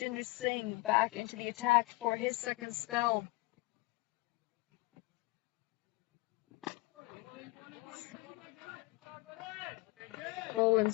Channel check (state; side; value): quieter; right; 22.5 dB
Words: Singh back into the attack for his second spell. Bowling